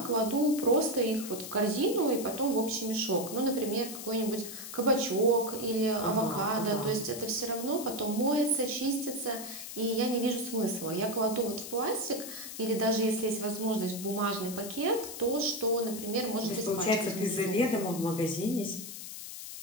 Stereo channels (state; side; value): noise; left; hiss, 10 dB below the sound